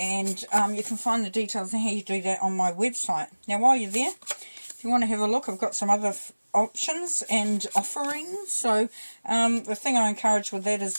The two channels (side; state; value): both; inverted; correlation -1.00